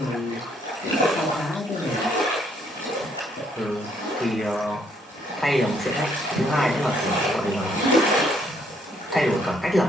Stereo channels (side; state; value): both; normal; correlation 0.69